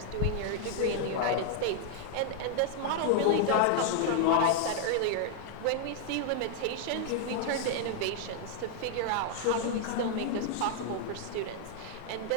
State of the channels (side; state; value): both; different; correlation 0.00